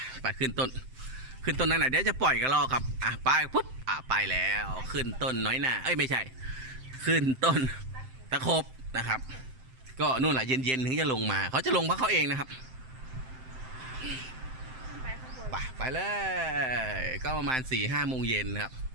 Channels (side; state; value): left; late; 7.7 ms